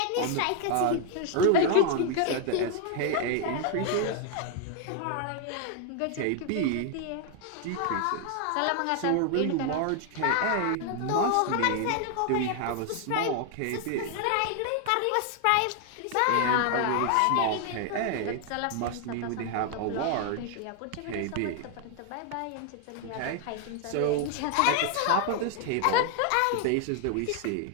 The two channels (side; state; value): both; different; correlation 0.00